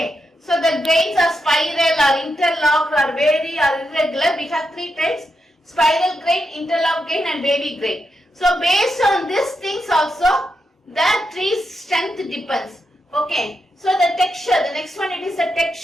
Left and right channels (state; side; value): normal; both; correlation 0.85